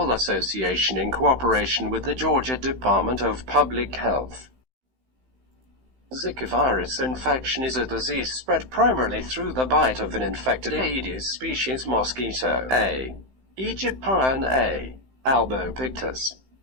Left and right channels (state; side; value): late; left; 15 ms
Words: Association in cooperation with the Georgia Department of Public Health. Zika virus infection is a disease spread primarily through the bite of an infected Aedes species mosquito, A. aegyptian A. albopictus.